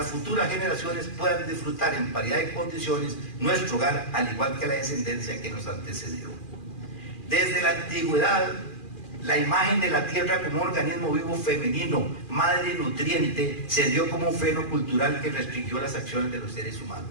futuras generaciones puedan disfrutar en paridad de condiciones nuestro hogar, al igual que la descendencia que nos antecedió. Desde la antigüedad, la imagen de la tierra como un organismo vivo femenino, madre nutriente, se dio como un freno cultural que restringió las acciones de los seres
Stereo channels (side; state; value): right; late; 2.4 ms